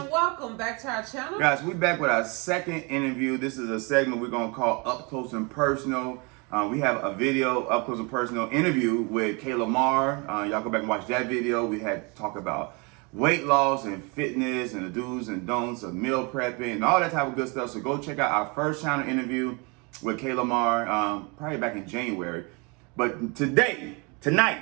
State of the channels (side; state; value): left; quieter; 30.4 dB